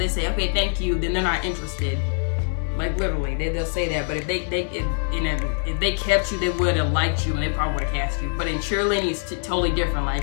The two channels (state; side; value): silent; right; 60 dB below the other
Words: say, okay, thank you, then they're not interested. Like, literally, they'll say that. But if they kept you, they would have liked you and they probably would have cast you. But in cheerleading, it's totally different.